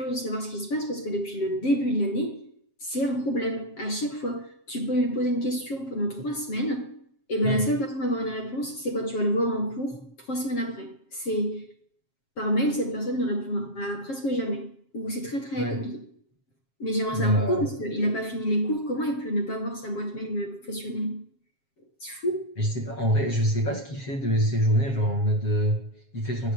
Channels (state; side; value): late; right; 7.4 ms